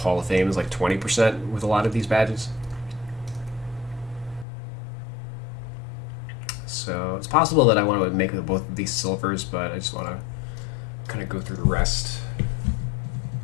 of Fame is like 20% with a lot of these badges. So it's possible that I want to make both of these silvers, but I just want to kind of go through the rest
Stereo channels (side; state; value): right; drops out; at 4.5 s